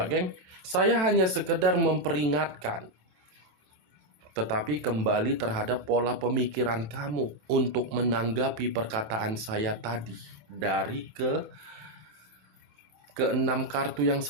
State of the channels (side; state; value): left; late; 27 ms